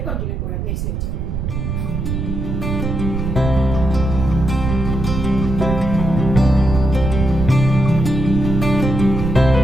करूयात नेक्स्ट लेक्चर.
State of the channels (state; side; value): noise; right; rumble, 3 dB below the sound